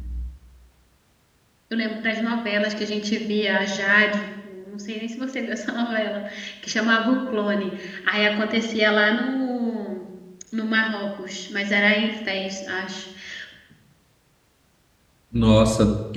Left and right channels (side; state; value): both; identical; correlation 1.00